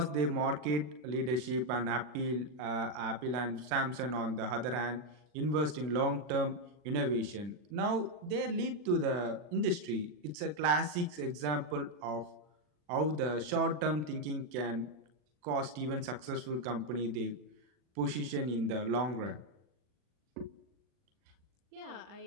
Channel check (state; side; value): late; left; 39 ms